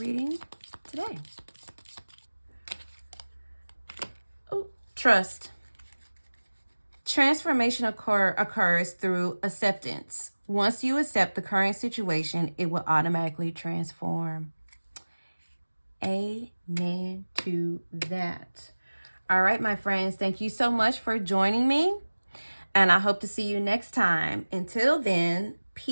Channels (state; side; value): inverted; both; correlation -1.00